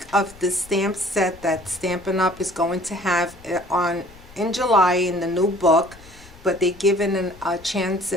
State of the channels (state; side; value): noise; left; rumble, 22 dB below the sound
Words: of the stamp set that Stampin' Up! Is going to have in July in the new book. But they're giving a chance